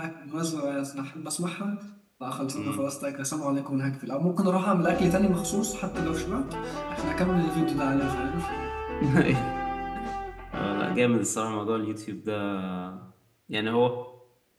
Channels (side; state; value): both; identical; correlation 1.00